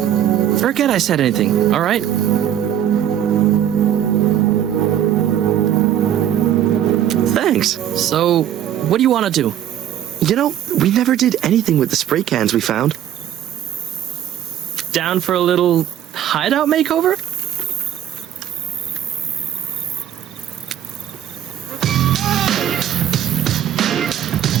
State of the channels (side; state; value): left; quieter; 10.7 dB